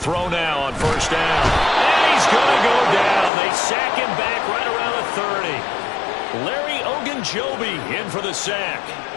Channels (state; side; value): drops out; right; at 3.3 s